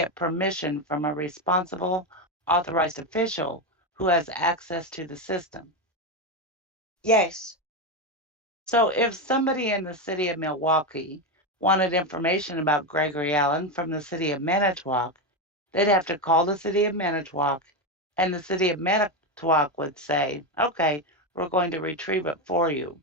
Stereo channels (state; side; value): normal; both; correlation 0.11